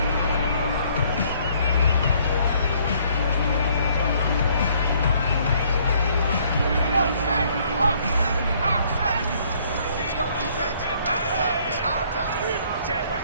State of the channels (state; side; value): inverted; both; correlation -0.63